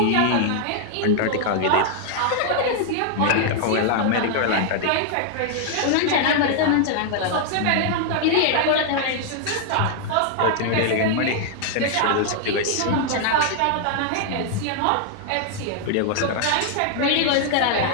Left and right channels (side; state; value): both; different; correlation 0.00